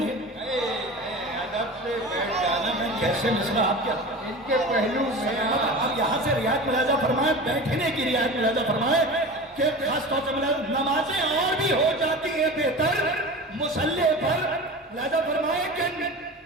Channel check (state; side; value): normal; both; correlation 0.33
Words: ادب سے بیٹھ جانا میں کیسے مصرع آپ کیا ان کے پہلو میں. اب یہاں سے رعایت ملاحظہ فرمائیں، بیٹھنے کی رعایت ملاحظہ فرمائیں کہ خاص طور سے نمازیں اور بھی ہو جاتی ہیں بہتر مسلح پر. ملاحظہ فرمائیں کہ